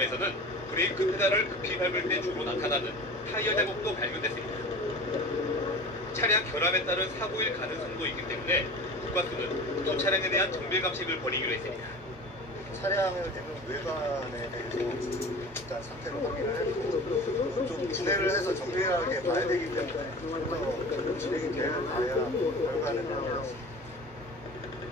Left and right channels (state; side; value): normal; both; correlation 0.37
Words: 브레이크 페달을 급히 밟을 때 주로 나타나는 타이어 자국도 발견됐습니다. 차량 결함에 따른 사고일 가능성도 있기 때문에 국과수는 두 차량에 대한 정밀 감식을 벌이기로 했습니다. 차량을 대는 외관에 대해서 일단 상태를 확인을 했고 좀 분해를 해서 정밀하게 봐야 되기 때문에 좀더 진행이 되어야 결과는 나오겠습니다.